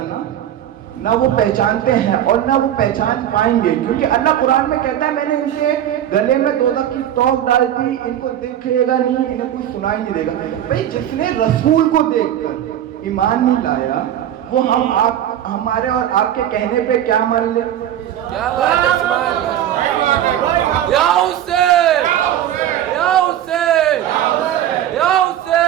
نہ وہ پہچانتے ہیں اور نہ وہ پہچان پائیں گے. کیونکہ اللہ قرآن میں کہتا ہے میں نے ان کے گلے میں دوزخ کی توق ڈال دی, ان کو دکھے گا نہیں, انہیں کوئی سنائی نہیں دے گا. بھئی جس نے رسول کو دیکھ کر ایمان نہیں لایا وہ ہمارے اور آپ کے کہنے پہ کیا مان لے. کیا بات ہے سبحان اللہ. یا حسین یا حسین یا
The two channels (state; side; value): quieter; left; 11.2 dB